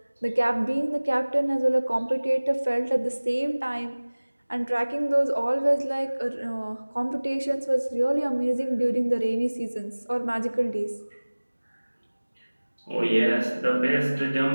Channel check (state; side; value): inverted; both; correlation -1.00